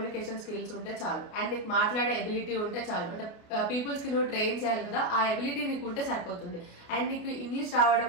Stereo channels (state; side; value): late; right; 29 ms